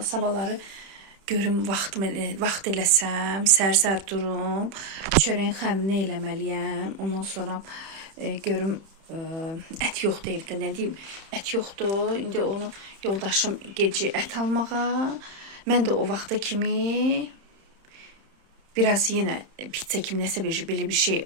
sabahları görüm vaxt eləsəm, sər-sər durum, çörəyin xəmirini eləməliyəm. Ondan sonra görüm ət yoxdur evdə, nə deyim, ət yoxdur. İndi onu yoldaşım gecə ət almağa, mən də o vaxta kimi biraz yenə pizza kimi nəsə belə bir şey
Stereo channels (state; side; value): late; left; 31 ms